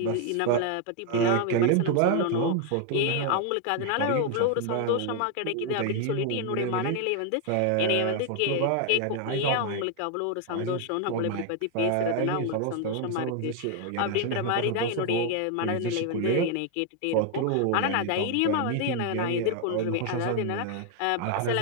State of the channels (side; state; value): both; different; correlation 0.01